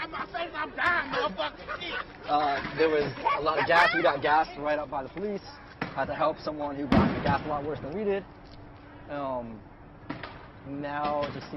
my face. I'm dying, motherfucker. There was a lot of gas. We got gassed right up by the police. Had to help someone who got gassed a lot worse than we did. Now it just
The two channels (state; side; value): identical; both; correlation 1.00